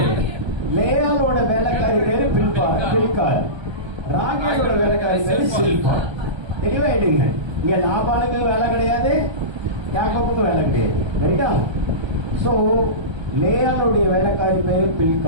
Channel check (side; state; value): left; late; 1.3 ms